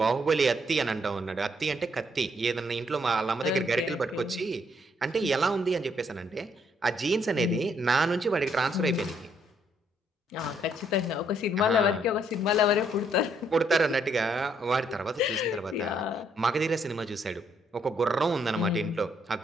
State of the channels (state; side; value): normal; both; correlation 0.71